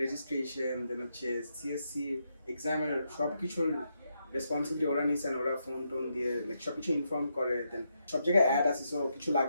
রেজিস্ট্রেশন, দেন হচ্ছে সিএসসি এক্সামের সবকিছুর রেসপন্সিবিলিটি ওরা নিয়েছেন। ওরা ফোন টোন দিয়ে লাইক সবকিছু ইনফর্ম করে, দেন সব জায়গায় অ্যাড আসি, সো কিছু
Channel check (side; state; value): both; inverted; correlation -0.81